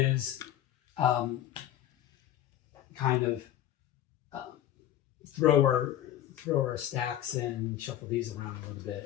kind of throw our stacks in, shuffle these around a little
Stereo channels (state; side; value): quieter; right; 12.2 dB